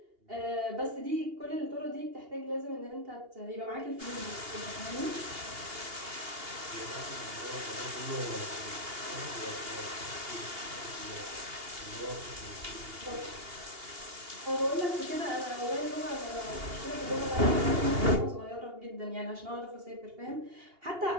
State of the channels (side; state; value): left; late; 2.8 ms